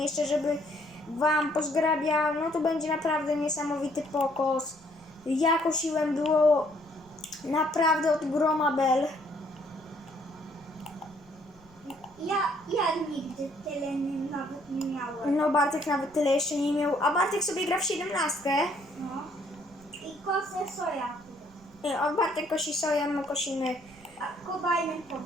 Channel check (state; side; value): noise; right; rumble, 25 dB below the sound